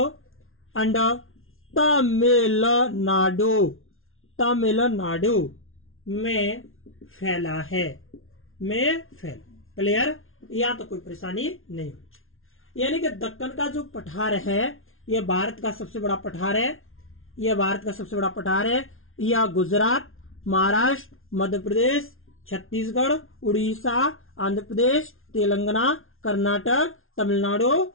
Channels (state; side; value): late; right; 0.61 ms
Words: एंड तमिलनाडु में फैला है, क्लियर। यहाँ तो कोई परेशानी नहीं होगी। यानी कि दक्कन का जो पठार है यह भारत का सबसे बड़ा पठार है। यह गुजरात महाराष्ट्र मध्य प्रदेश छत्तीसगढ़ उड़ीसा आंध्र प्रदेश तेलंगाना कर्नाटक तमिलनाडु